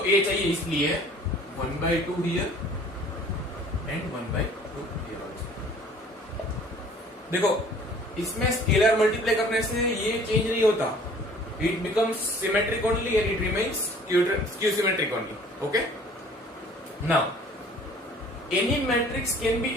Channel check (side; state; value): both; normal; correlation 0.52